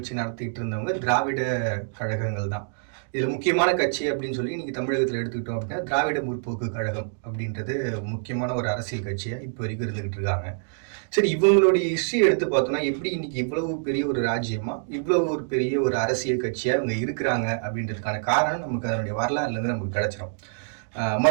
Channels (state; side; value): silent; left; digital silence